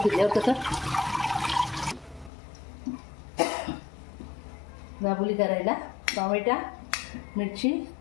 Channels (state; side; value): drops out; right; at 2.3 s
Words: कसं गाबोली करायला टोमॅटो, मिरची,